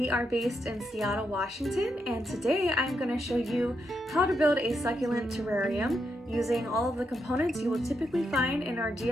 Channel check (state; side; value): normal; both; correlation 0.82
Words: are based in Seattle, Washington, and today I'm going to show you how to build a succulent terrarium using all of the components you will typically find in our